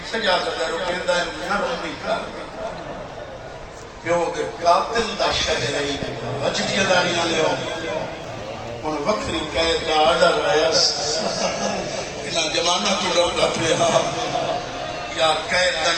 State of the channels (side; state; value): both; identical; correlation 1.00